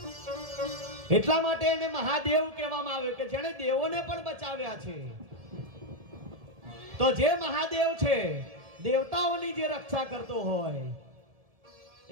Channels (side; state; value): left; late; 1.7 ms